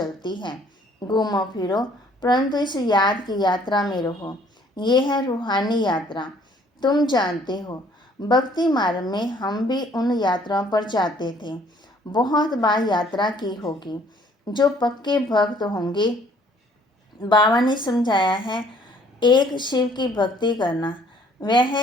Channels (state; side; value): normal; both; correlation 0.60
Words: है। घूमो फिरो, परंतु इस याद की यात्रा में रहो। ये है रूहानी यात्रा। तुम जानते हो, भक्ति मार्ग में हम भी उन यात्राओं पर जाते थे। बहुत बार यात्रा की होगी। जो पक्के भक्त होंगे, बाबा ने समझाया है, एक शिव की भक्ति करना, वह